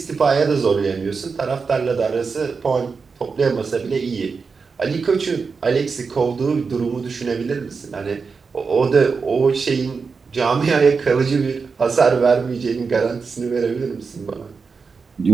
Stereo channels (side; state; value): left; quieter; 5.0 dB